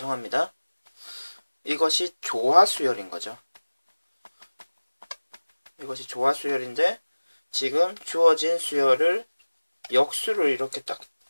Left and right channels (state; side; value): inverted; both; correlation -1.00